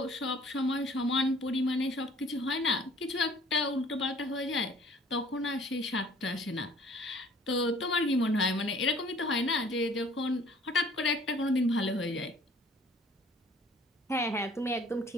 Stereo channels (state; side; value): normal; both; correlation 0.54